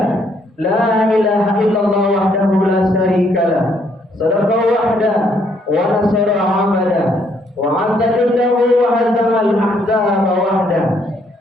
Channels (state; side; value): normal; both; correlation 0.69